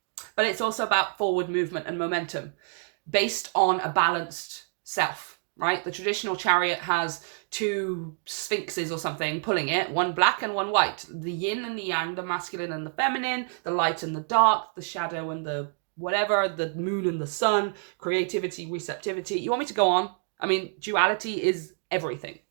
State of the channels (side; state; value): left; silent; 59 dB below the other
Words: But it's also about forward movement and momentum based on a balanced self, right? The traditional Chariot has two sphinxes or something pulling it, one black and one white, the yin and the yang, the masculine and the feminine, the light and the dark, the shadow and the whatever, the moon and the sun, creativity, receptivity. You want me to go on? I mean, duality is everything,